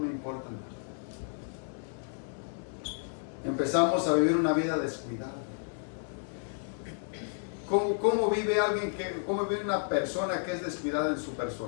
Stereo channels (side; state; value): right; silent; digital silence